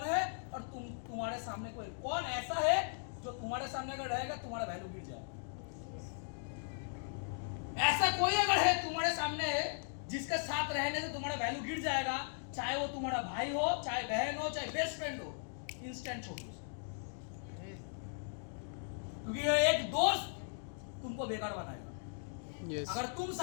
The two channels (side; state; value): right; silent; digital silence